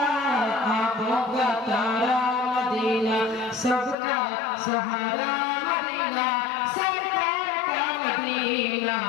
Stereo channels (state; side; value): drops out; right; at 4.0 s